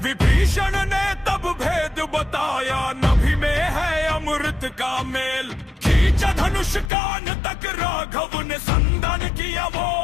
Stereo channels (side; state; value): right; drops out; at 6.9 s